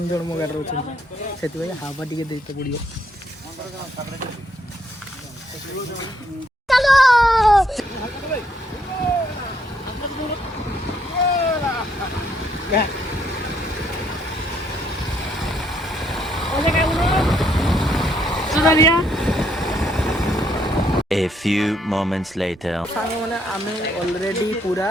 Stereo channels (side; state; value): both; normal; correlation 0.72